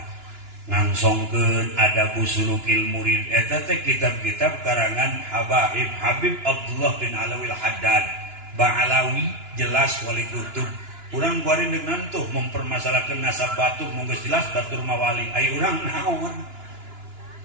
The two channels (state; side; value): late; left; 2.9 ms